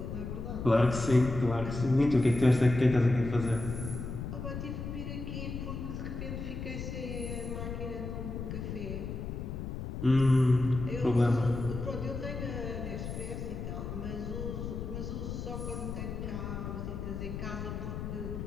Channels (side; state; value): left; noise; rumble, 6 dB below the sound